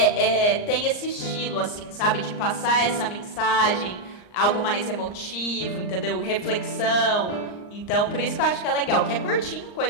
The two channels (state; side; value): late; right; 39 ms